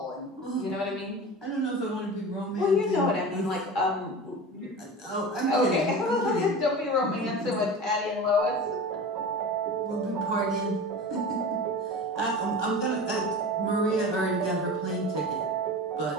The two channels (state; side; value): normal; both; correlation 0.32